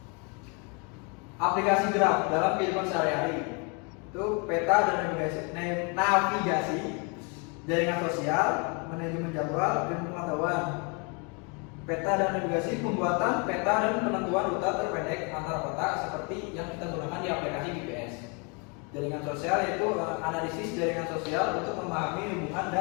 Aplikasi graf dalam kehidupan sehari-hari itu peta dan navigasi, jaringan sosial, manajemen jadwal, dan pengetahuan. Peta dan navigasi, pembuatan peta dan penentuan rute terpendek antara kota seperti yang kita gunakan di aplikasi GPS. Jaringan sosial yaitu analisis jaringan sosial untuk memahami hubungan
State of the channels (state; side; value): quieter; right; 33.6 dB